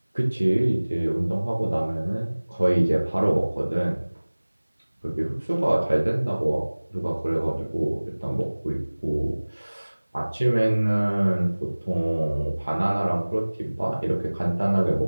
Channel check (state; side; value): inverted; both; correlation -1.00